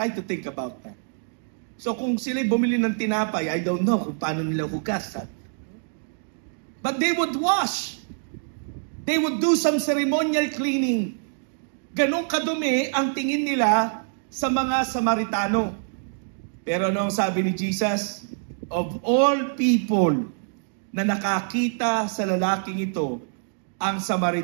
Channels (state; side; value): silent; left; digital silence